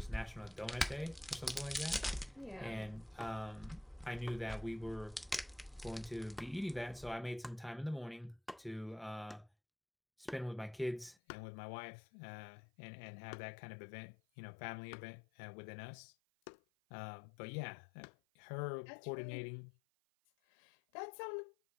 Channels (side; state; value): right; drops out; at 11.2 s